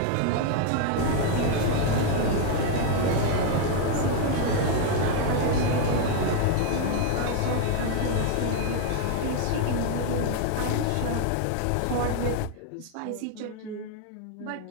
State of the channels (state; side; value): different; both; correlation 0.01